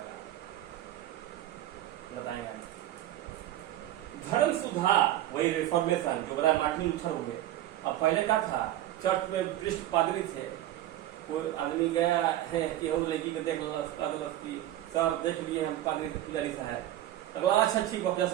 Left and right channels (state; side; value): quieter; left; 13.5 dB